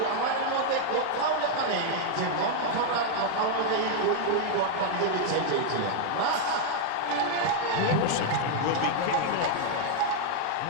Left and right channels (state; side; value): different; both; correlation 0.00